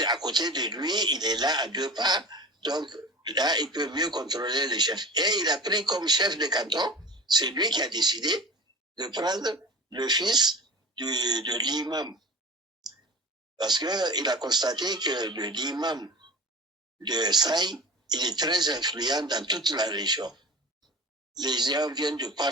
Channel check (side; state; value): both; normal; correlation 0.34